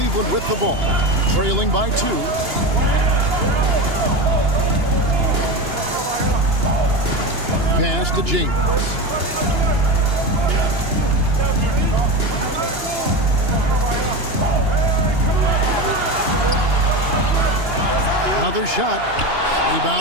with the ball, trailing by 2. Pass to James. Another shot.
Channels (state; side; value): late; left; 2.9 ms